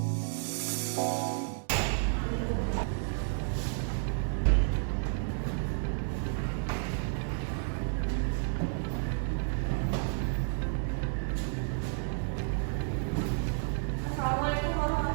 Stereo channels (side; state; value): left; silent; digital silence